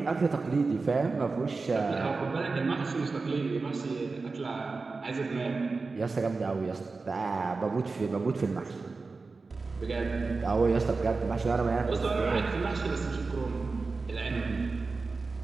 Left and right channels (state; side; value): quieter; left; 4.0 dB